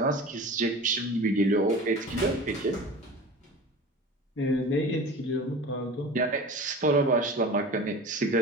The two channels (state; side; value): normal; both; correlation 0.36